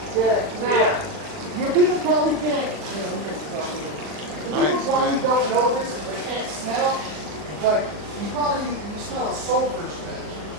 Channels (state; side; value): late; left; 39 ms